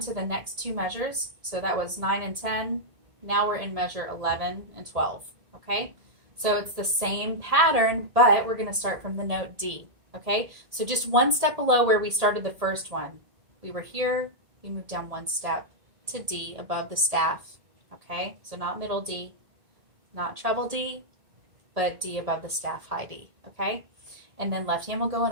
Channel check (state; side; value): late; left; 1.8 ms